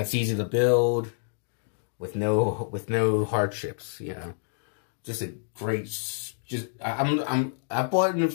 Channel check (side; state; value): right; silent; digital silence